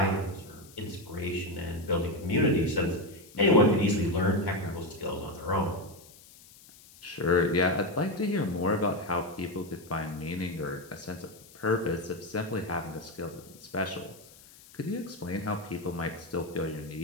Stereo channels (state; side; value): noise; left; hiss, 22 dB below the sound